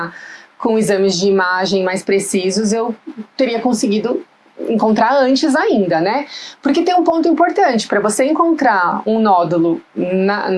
com exames de imagem mais precisos, eu teria conseguido encontrar antes ainda, né? Porque tem um ponto importante, para você encontrar um nódulo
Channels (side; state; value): both; identical; correlation 1.00